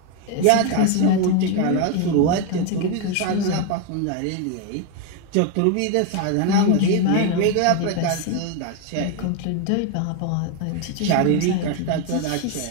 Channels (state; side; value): different; both; correlation 0.01